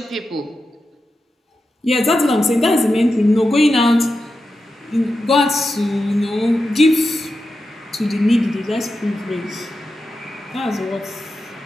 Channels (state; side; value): normal; both; correlation 0.90